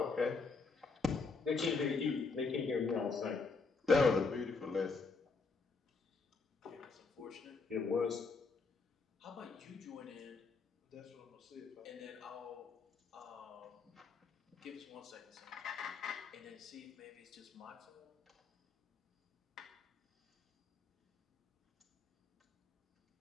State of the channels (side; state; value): right; quieter; 4.3 dB